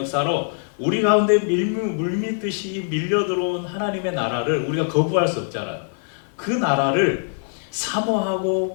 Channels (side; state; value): right; silent; 64 dB below the other